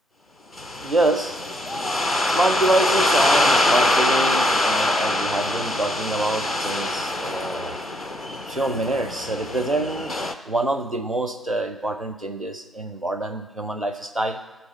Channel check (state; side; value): normal; both; correlation 0.72